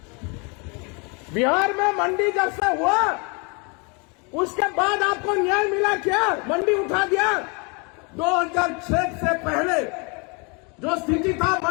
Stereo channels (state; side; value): quieter; right; 32.3 dB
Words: बिहार में मंडी जब से हुआ उसके बाद आपको न्याय मिला क्या? मंडी उठा दिया। 2006 से पहले जो स्थिति था,